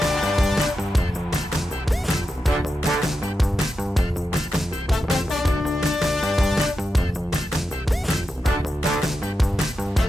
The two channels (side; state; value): both; normal; correlation 0.89